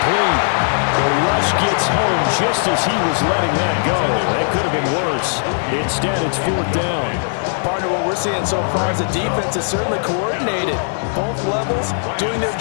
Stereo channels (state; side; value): silent; right; digital silence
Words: The rush gets home just as he was letting that go. That could have been worse. Instead, it's 4th down. Partner, what we're seeing so far is the defense is certainly coordinated. Both levels doing their